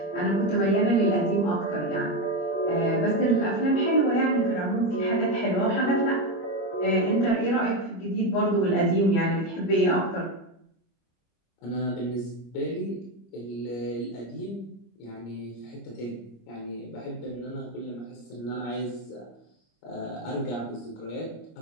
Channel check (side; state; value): right; late; 25 ms